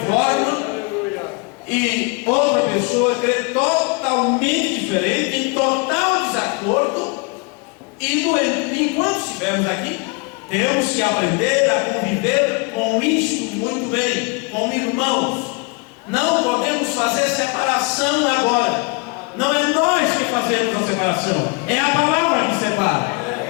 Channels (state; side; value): quieter; right; 29.7 dB